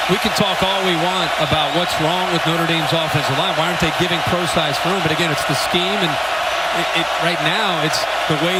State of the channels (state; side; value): identical; both; correlation 1.00